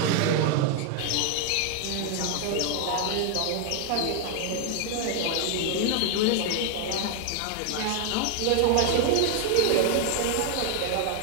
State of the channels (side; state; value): both; different; correlation 0.00